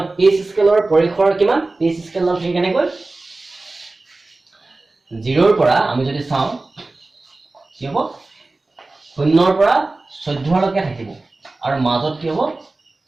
পিএইচ স্কেলৰ পৰিসৰ কিমান পিএইচ স্কেলৰ ঠিক কেনেকৈ 0 ৰ পৰা আমি যদি চাওঁ কি হ'ব 0 ৰ পৰা 14 লৈকে থাকিব আৰু মাজত কি হ'ব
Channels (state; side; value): quieter; left; 3.2 dB